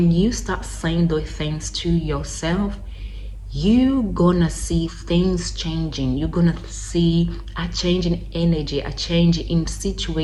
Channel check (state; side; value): identical; both; correlation 1.00